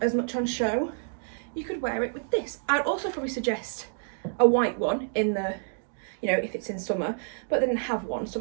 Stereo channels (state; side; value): silent; left; digital silence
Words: as much on show, you could wear it with this. I'd also probably suggest a white one in the, you know, if it's in summer, but they didn't have one, so